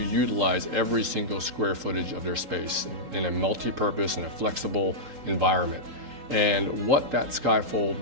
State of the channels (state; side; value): late; left; 3.8 ms